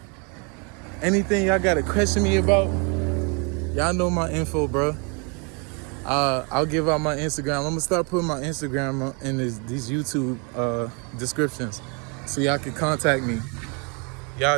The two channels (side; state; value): left; quieter; 34.0 dB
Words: question me about, y'all know my info, bro. I'll give out my Instagram. I'm gonna start putting my Instagram in these YouTube descriptions, so y'all can contact me.